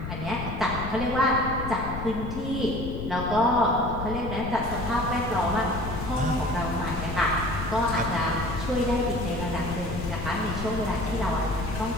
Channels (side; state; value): left; noise; rumble, 6 dB below the sound